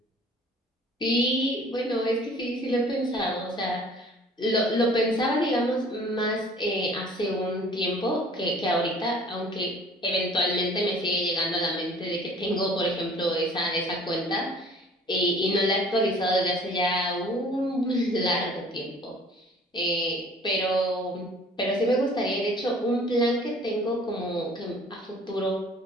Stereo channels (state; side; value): normal; both; correlation 0.51